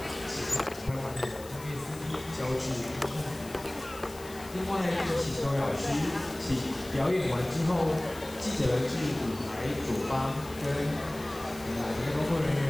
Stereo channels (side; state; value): left; noise; hiss, 18 dB below the sound